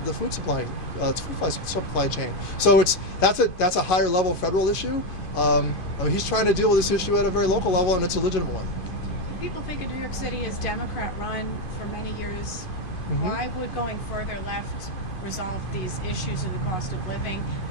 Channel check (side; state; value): right; late; 2.5 ms